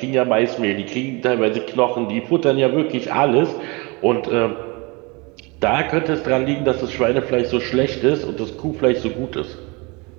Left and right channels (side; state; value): left; quieter; 27.7 dB